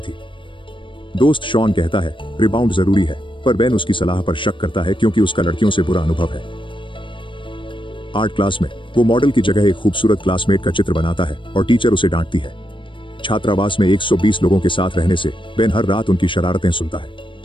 दोस्त शॉन कहता है रिबाउंड जरूरी है, पर बेन उसकी सलाह पर शक करता है क्योंकि उसका लड़कियों से बुरा अनुभव है। आर्ट क्लास में वो मॉडल की जगह एक खूबसूरत क्लासमेट का चित्र बनाता है और टीचर उसे डांटती है। छात्रावास में 120 लोगों के साथ रहने से बेन हर रात उनकी शरारतें सुनता है।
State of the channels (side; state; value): right; late; 0.24 ms